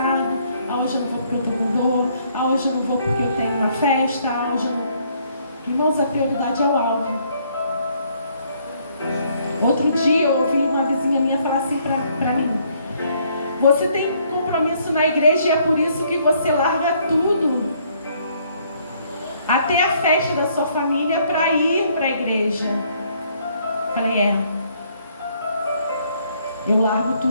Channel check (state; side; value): inverted; both; correlation -0.67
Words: hoje eu não vou porque eu estou com dor, hoje eu não vou porque eu tenho uma festa, hoje eu não... Irmãos, a prioridade é o alvo. Outro dia eu ouvi uma vizinha minha falar assim para mim: você tem compromisso na igreja e é por isso que você larga tudo, até a festa da sua família, para ir para a igreja. Falei, eu largo